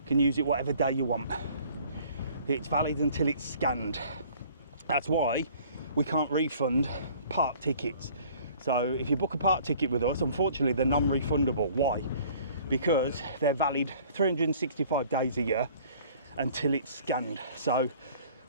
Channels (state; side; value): inverted; both; correlation -0.53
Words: can use it whatever day you want. It's valid until it's scanned. That's why we can't refund park tickets. So if you book a park ticket with us, unfortunately they're non-refundable. Why? Because they're valid 365 days a year until it's scanned. So